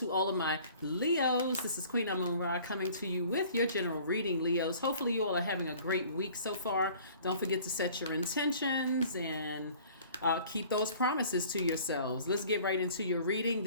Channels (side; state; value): both; inverted; correlation -0.50